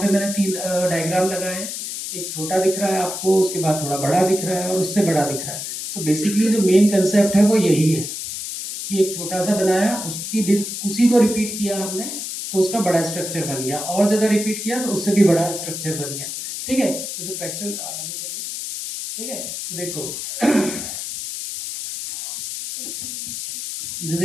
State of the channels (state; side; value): noise; left; hiss, 6 dB below the sound